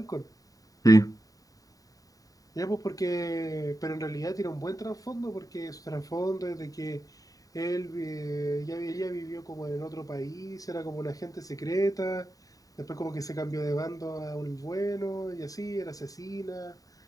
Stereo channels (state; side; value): late; right; 0.17 ms